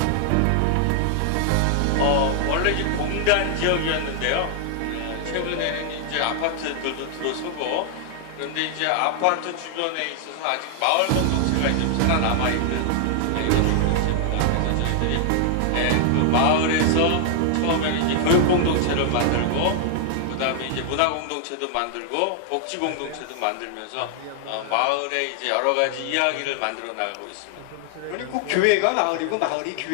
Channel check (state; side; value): different; both; correlation 0.00